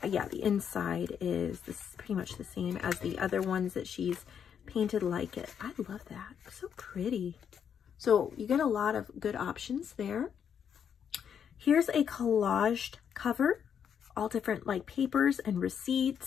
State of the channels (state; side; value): quieter; right; 8.0 dB